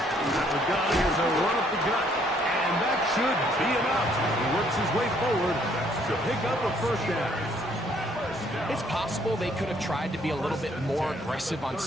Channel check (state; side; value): normal; both; correlation 0.65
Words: is a run up the gut, and that should be enough. He works his way forward to pick up a first down. It's possible they could have tried to be a little bit more aggressive on